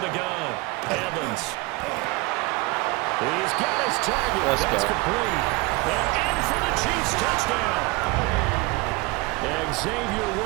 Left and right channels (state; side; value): quieter; left; 23.6 dB